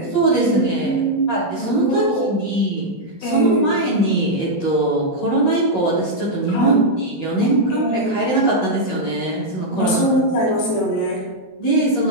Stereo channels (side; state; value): right; late; 16 ms